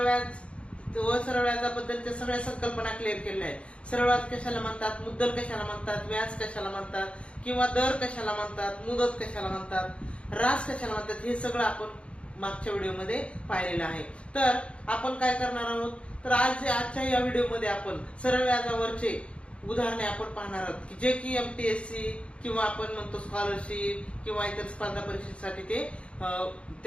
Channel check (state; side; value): late; right; 0.060 ms